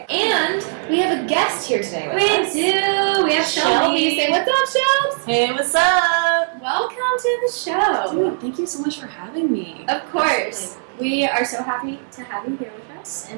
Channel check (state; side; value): silent; left; 66 dB below the other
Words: And we have a guest here today with us. We do. We have Shelby. Say what's up, Shelby? Hey, what's up? Welcome to the show. Dude, thank you so much for having me. Of course. We are so happy to have you here with us,